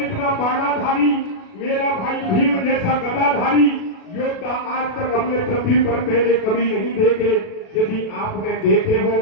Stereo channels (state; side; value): late; right; 37 ms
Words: बाणाधारी, मेरा भाई भीम जैसा गदाधारी योद्धा आज तक हमने पृथ्वी पर पहले कभी नहीं देखे। यदि आपने देखे हो